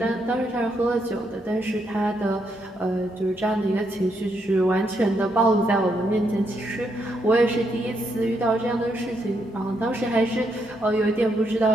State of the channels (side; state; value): both; normal; correlation 0.78